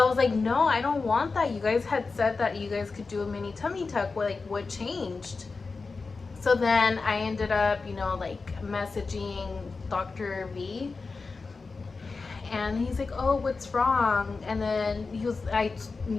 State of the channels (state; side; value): quieter; right; 4.2 dB